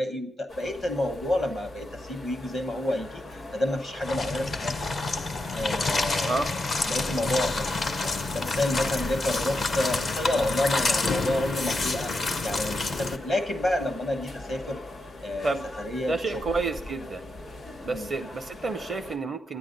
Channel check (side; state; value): both; normal; correlation 0.85